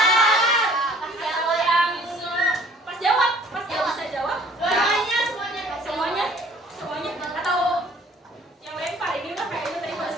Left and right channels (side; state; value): both; normal; correlation 0.54